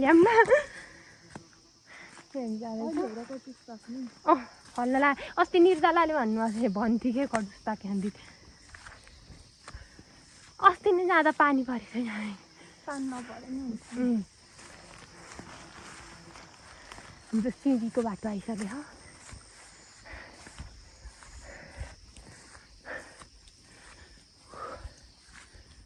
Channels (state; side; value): identical; both; correlation 1.00